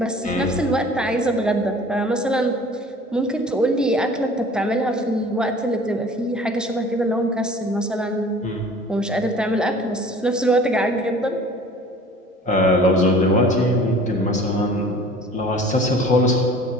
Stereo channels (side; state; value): both; normal; correlation 0.47